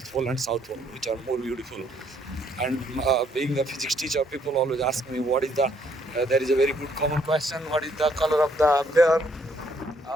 Pole and South Pole, which are more beautiful. And being a physics teacher, people always ask me what is the. There is a very good common question: what is the color of the bear?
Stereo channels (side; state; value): both; normal; correlation 0.68